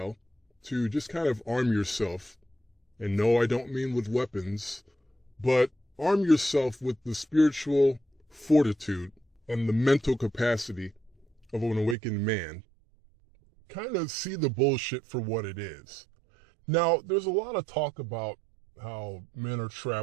to just kind of arm yourself. And no, I don't mean with weapons, but arm yourself with the spiritual fortitude and the mental capacity of an awakened man. Kind of see the bullshit for what it is. Now, there's a lot of talk about how men are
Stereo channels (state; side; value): drops out; left; at 12.0 s